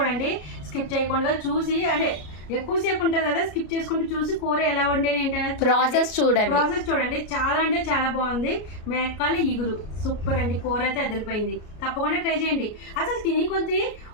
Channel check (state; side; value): late; right; 33 ms